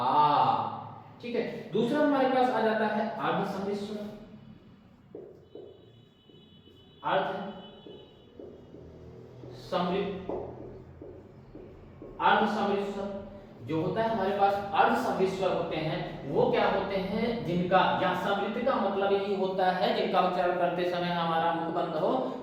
ठीक है, दूसरा हमारे पास आ जाता है अर्ध समृद्ध स्वर। अर्ध समृद्ध, अर्ध समृद्ध स्वर जो होता है हमारे पास, अर्ध समृद्ध स्वर होते हैं वो क्या होते हैं, जिनका, या समृद्ध का मतलब यही होता है जिनका उच्चारण करते समय हमारा मुख बंद हो,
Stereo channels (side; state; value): both; identical; correlation 1.00